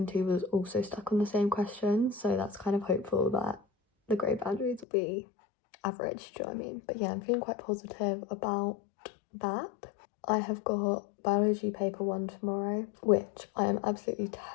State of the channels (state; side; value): drops out; right; at 4.9 s